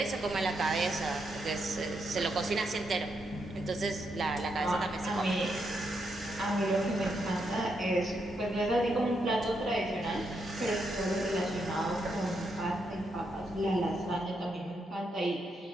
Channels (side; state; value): both; normal; correlation 0.80